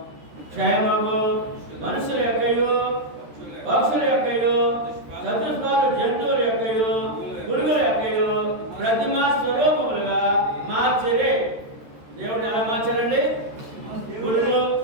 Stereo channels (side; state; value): left; late; 13 ms